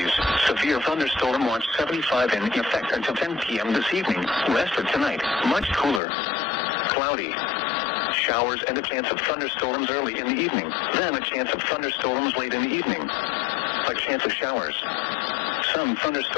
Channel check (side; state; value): right; drops out; at 6.0 s